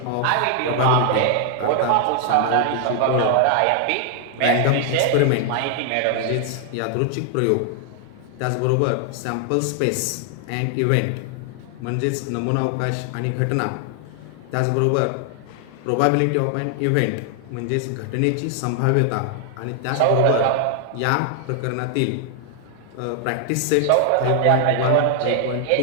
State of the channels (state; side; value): different; both; correlation 0.00